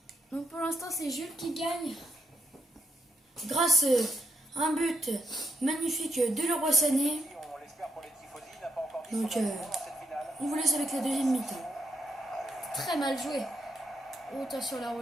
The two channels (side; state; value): both; normal; correlation 0.79